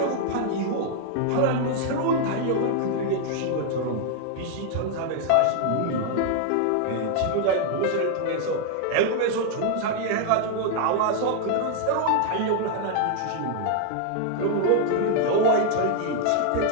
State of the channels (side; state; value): both; different; correlation 0.00